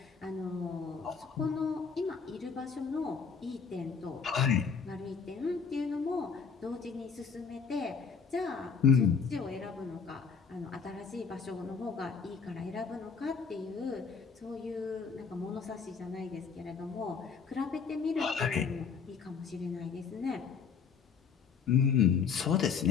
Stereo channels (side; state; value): right; quieter; 5.9 dB